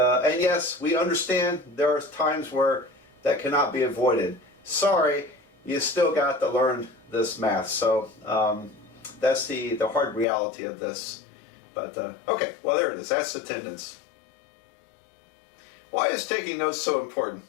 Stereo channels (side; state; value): right; drops out; at 10.2 s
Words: we understand there are times where that cannot be avoided. Sorry, you still got to learn this math. So that's the hard reality of this. But okay, well, there it is. That's attendance. Why is taking notes so important?